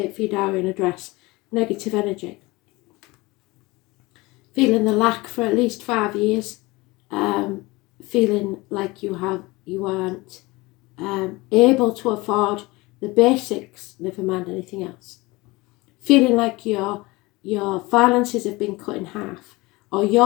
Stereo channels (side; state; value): right; quieter; 22.4 dB